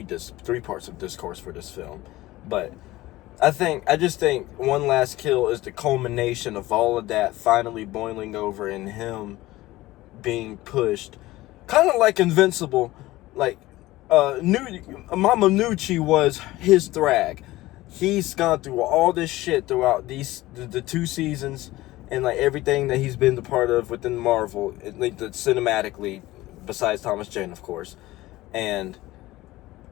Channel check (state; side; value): quieter; right; 17.9 dB